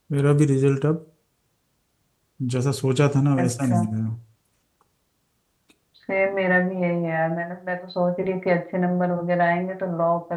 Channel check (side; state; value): both; identical; correlation 1.00